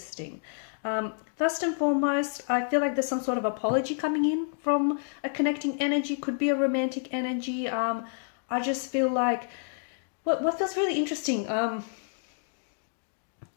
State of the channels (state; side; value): silent; right; digital silence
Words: First and foremost, I feel like there's some sort of apology coming in from a connecting energy. Could be a romantic energy. I just feel like what feels really interesting.